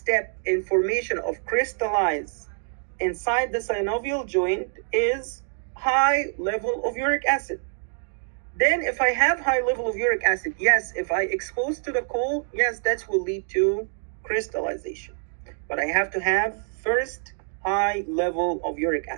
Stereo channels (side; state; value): left; silent; 61 dB below the other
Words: in formation of crystallize inside the synovial joint is high level of uric acid. Then if I have high level of uric acid, yes, if I expose to the cold, yes, that will lead to crystallization. But I have to have first high level of uric